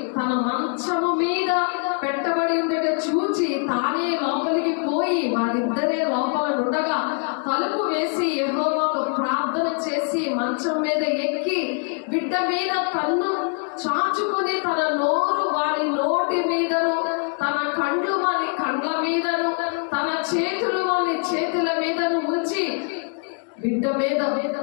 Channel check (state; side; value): quieter; right; 39.3 dB